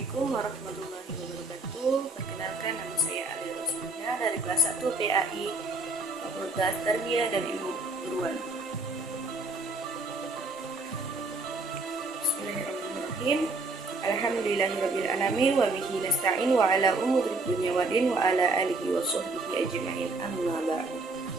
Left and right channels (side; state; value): left; quieter; 3.2 dB